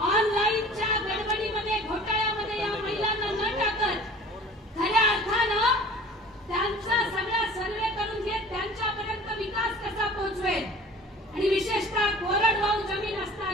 ऑनलाईनच्या गडबडीमध्ये घोटाळ्यामध्ये या महिलांना न टाकत खऱ्या अर्थानं त्यांचा सगळा सर्वे करून घेत त्यांच्यापर्यंत विकास कसा पोहोचवेल आणि विशेषतः कोरडवाहू जमीन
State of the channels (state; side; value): normal; both; correlation 0.45